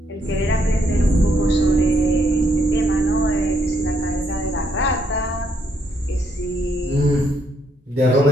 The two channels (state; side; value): normal; both; correlation 0.74